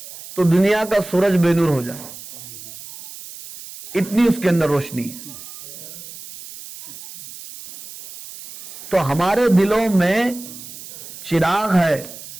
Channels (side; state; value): right; noise; hiss, 15 dB below the sound